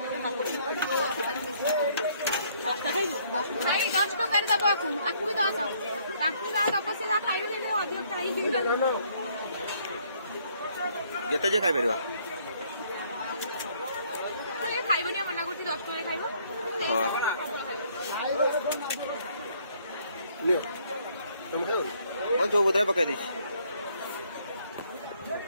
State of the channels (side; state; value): both; inverted; correlation -0.65